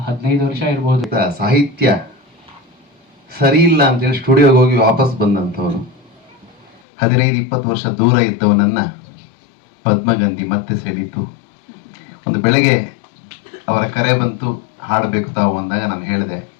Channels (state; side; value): drops out; right; at 6.8 s